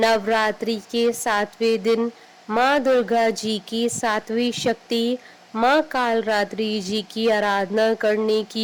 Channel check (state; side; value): identical; both; correlation 1.00